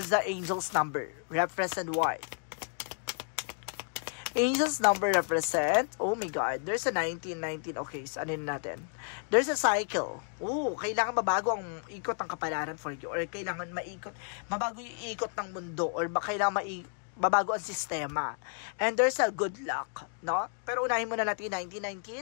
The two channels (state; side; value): silent; right; 57 dB below the other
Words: the angel's number. Represent what? Angel's number represent, oh my God, there's a 19. Okay, so anin natin? There's a cycle. Oh, kailangan mabago ang ikot ng kapalaran for you. Or kailangan mabago yung ikot ng mundo. Or kailangan mabago ang sistema. And there's a good luck. No? Pero unahin muna natin